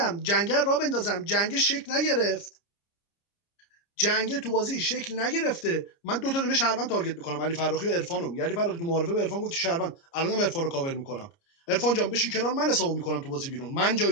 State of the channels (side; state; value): right; late; 29 ms